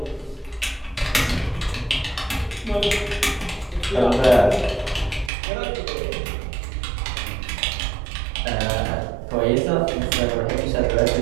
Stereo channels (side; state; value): left; drops out; at 5.3 s